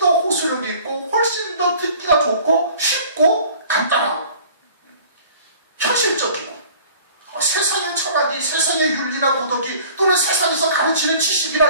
호소력이 있고 훨씬 더 듣기가 좋고 쉽고 간단하고 현실적이고 세상의 철학이 세상의 윤리나 도덕이 또는 세상에서 가르치는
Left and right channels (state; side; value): inverted; both; correlation -0.49